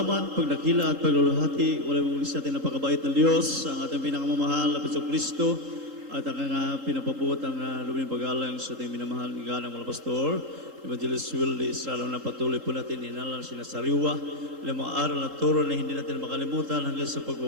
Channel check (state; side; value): late; left; 3.8 ms